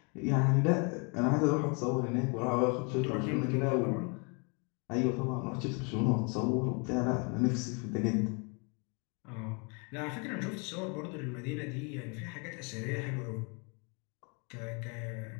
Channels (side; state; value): right; quieter; 33.8 dB